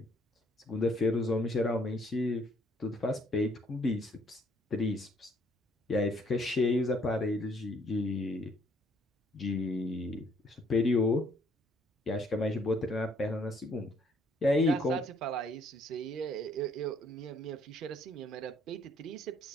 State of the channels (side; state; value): both; normal; correlation 0.65